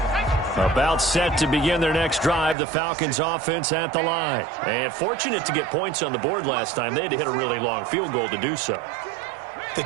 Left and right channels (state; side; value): drops out; left; at 2.6 s